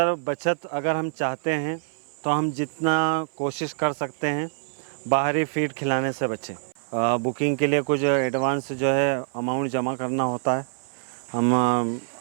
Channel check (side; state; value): left; silent; 60 dB below the other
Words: बचत अगर हम चाहते हैं तो हम जितना कोशिश कर सकते हैं बाहरी फीड खिलाने से बचें। बुकिंग के लिए कुछ एडवांस जो है अमाउंट जमा करना होता है, हम